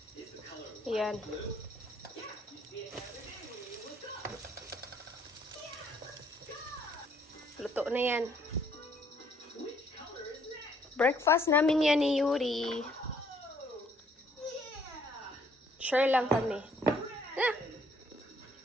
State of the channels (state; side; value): normal; both; correlation 0.65